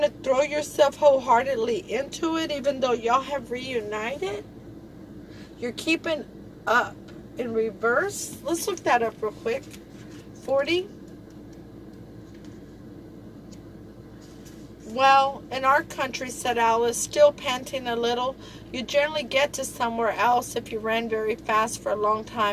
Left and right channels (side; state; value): both; identical; correlation 1.00